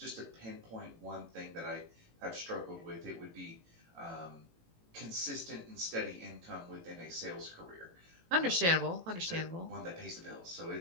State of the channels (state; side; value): late; left; 18 ms